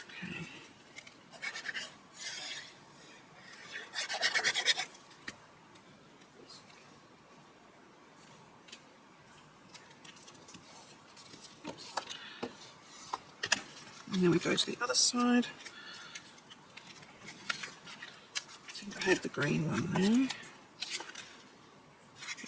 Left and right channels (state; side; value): identical; both; correlation 1.00